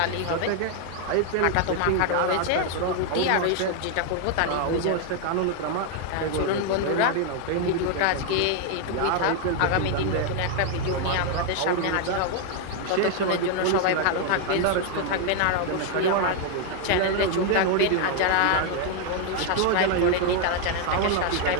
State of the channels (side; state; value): both; different; correlation 0.00